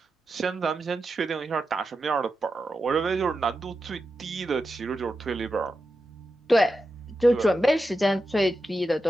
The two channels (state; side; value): normal; both; correlation 0.90